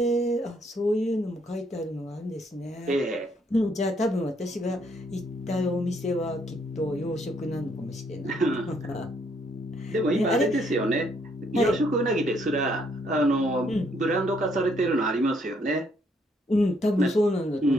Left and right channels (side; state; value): both; normal; correlation 0.70